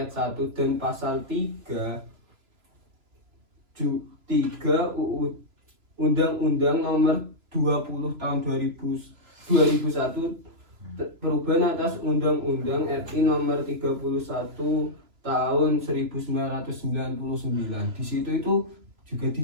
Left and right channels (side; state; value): left; late; 3.0 ms